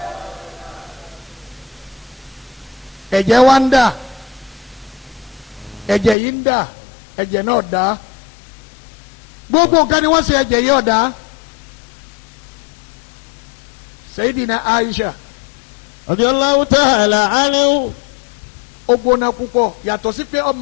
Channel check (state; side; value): drops out; right; at 6.2 s